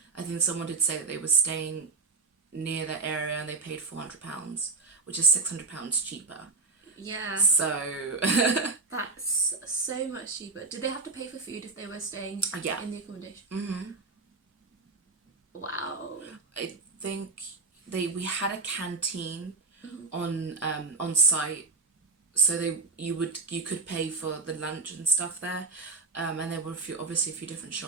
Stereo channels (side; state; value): left; quieter; 4.0 dB